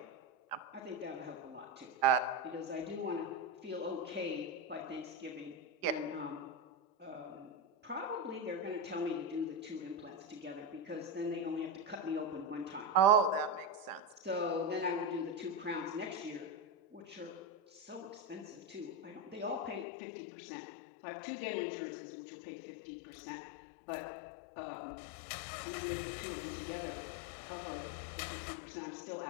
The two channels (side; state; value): right; drops out; at 19.9 s